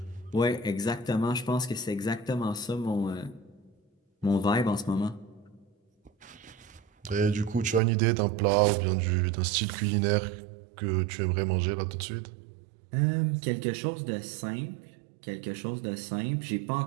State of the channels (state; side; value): drops out; left; at 7.8 s